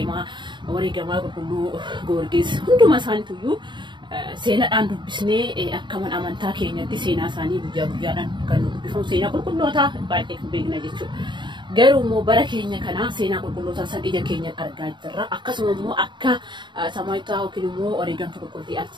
wareegamaa qulqulluu Goorgis hunduma isaaniituyyuu seenaadhaan dubbisnee akkaman amantaa keenyatti seenaa isaanii guyyaa guyyaadhaan kan dubbifamu seenaa qulqullootaa baay'ee kan beekna jechuudha. Garuu immoo bara keenya kana seenaa qulqullootaa san ija keenyaan argaa jirra akkasuma immoo akka Samaayitaa yookiin immoo wareegamtuu qulqullittii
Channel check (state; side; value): late; left; 0.23 ms